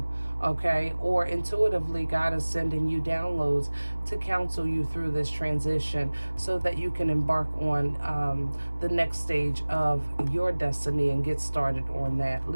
okay? Or intuitively, God is sending you downloads to counsel you through this transition so that you can embark on the next stage of your destiny and get started on that.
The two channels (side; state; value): both; inverted; correlation -1.00